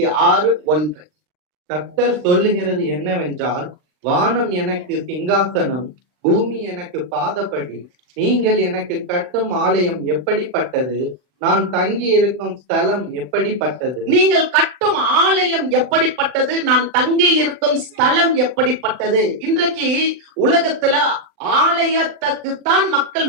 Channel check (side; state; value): left; late; 40 ms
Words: கர்த்தர் சொல்லுகிறது என்னவென்றால், வானம் எனக்கு சிங்காசனம், பூமி எனக்கு பாதப்படி, நீங்கள் எனக்கு கட்டும் ஆலயம் எப்படிப்பட்டது, நான் தங்கி இருக்கும் ஸ்தலம் எப்படிப்பட்டது. நீங்கள் கட்டும் இருக்கும் ஆலயம் எப்படிப்பட்டது, நான் தங்கி இருக்கும் ஸ்தலம் எப்படிப்பட்டது. இன்றைக்கு உலகத்துல ஆலயத்துக்குத்தான் மக்கள்